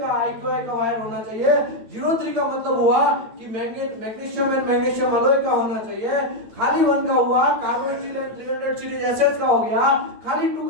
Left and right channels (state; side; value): late; left; 9.1 ms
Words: IQI का वायर होना चाहिए। 03 का मतलब हुआ कि मैग्नीशियम एंड मैग्नीशियम अलॉय का होना चाहिए। खाली 1 का हुआ carbon steel and 300 series SS का हो गया। खाली 2